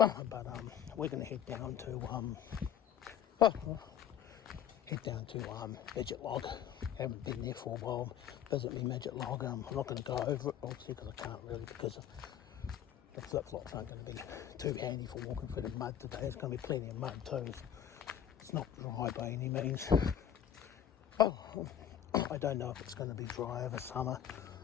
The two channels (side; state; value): right; quieter; 9.7 dB